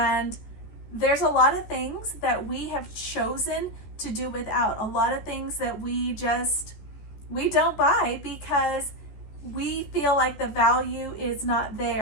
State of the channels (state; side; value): late; right; 14 ms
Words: there's a lot of things that we have chosen to do without. A lot of things that we don't buy because we feel like the value is not